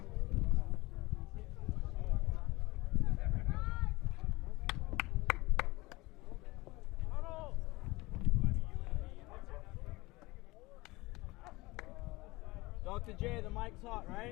Dr. J, the mic's hot,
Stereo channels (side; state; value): right; quieter; 21.6 dB